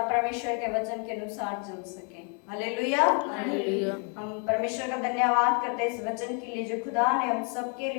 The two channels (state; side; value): quieter; right; 37.3 dB